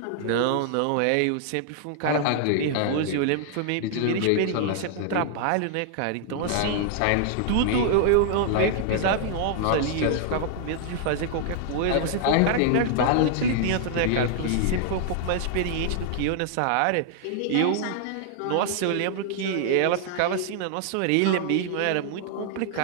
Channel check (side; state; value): both; different; correlation -0.01